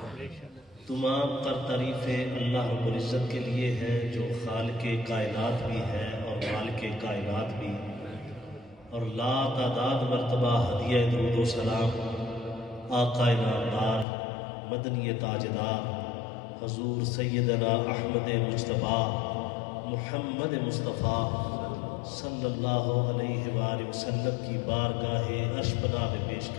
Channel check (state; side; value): drops out; right; at 14.1 s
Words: تمام تر تعریفیں اللہ رب العزت کے لیے ہیں جو خالق کائنات بھی ہے اور مالک کائنات بھی، اور لا تعداد مرتبہ ہدیہ درود و سلام آقا نامدار مدنی تاجدار حضور سیدنا احمد مجتبیٰ محمد مصطفیٰ صلی اللہ علیہ وآلہ وسلم کی بارگاہ عرش پناہ میں پیش